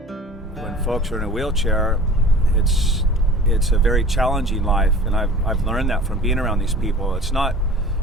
When folks are in a wheelchair, it's a very challenging life, and I've learned that from being around these people. It's not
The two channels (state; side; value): normal; both; correlation 0.42